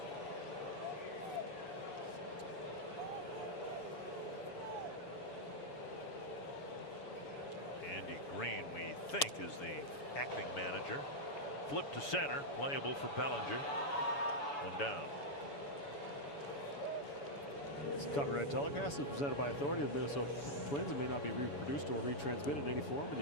Andy Green, we think, is the acting manager. Flip to center, playable for Bellinger. 1 down. This Copyright telecast is presented by authority of the Minnesota Twins and may not be reproduced or retransmitted in any form, and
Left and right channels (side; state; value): right; late; 7.0 ms